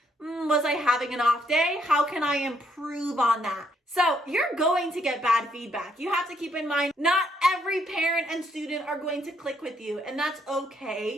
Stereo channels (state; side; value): normal; both; correlation 0.72